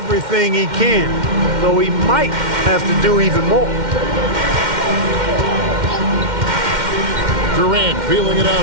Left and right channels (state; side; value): late; left; 2.1 ms